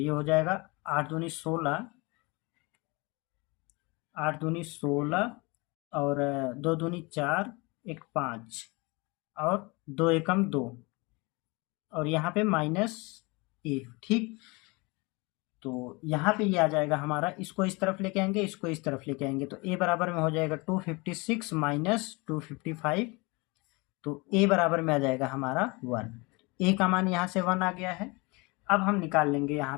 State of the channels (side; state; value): right; quieter; 26.6 dB